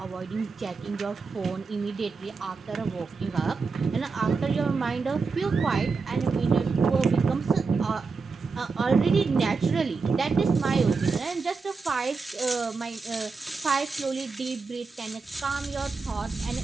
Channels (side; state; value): left; quieter; 4.6 dB